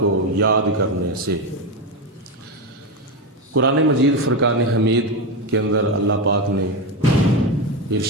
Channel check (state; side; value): normal; both; correlation 0.14